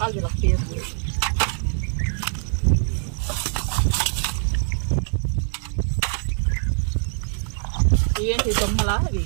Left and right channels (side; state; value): left; silent; 63 dB below the other